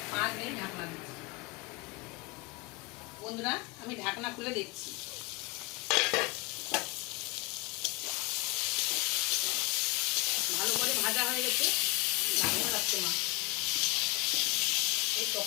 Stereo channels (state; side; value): quieter; right; 25.6 dB